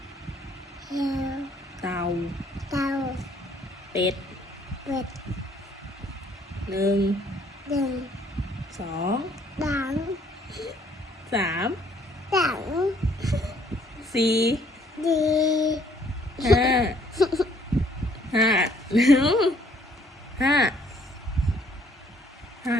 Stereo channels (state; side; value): normal; both; correlation 0.63